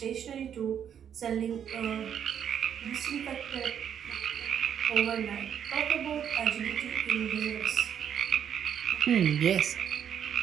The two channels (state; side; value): quieter; left; 8.7 dB